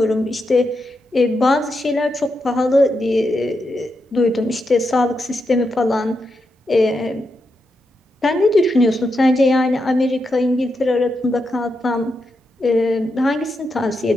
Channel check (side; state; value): both; normal; correlation 0.85